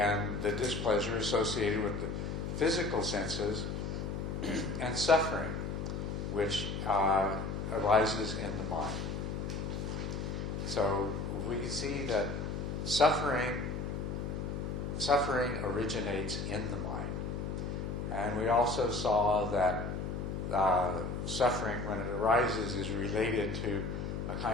the displeasure associated with the physical senses, and suffering, which arises in the mind. So we can see that suffering originates in the mind. And we also saw that suffering, when it arises, is related to a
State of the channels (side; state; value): left; noise; hum, 3 dB below the sound